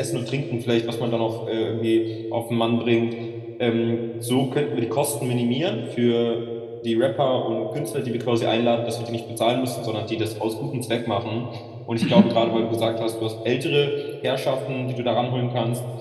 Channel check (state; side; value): identical; both; correlation 1.00